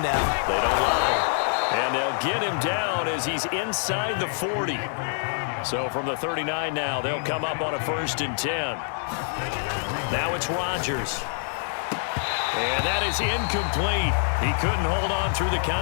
now. They don't lie. And they'll get him down as he's inside the 40. So from the 39 now, they'll come up on a 1st and 10. Now it's Rodgers. And that is incomplete. He couldn't hold on through the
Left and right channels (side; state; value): right; silent; digital silence